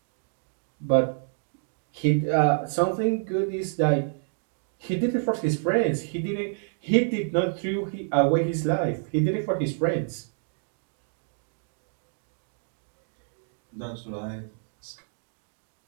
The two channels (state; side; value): silent; left; digital silence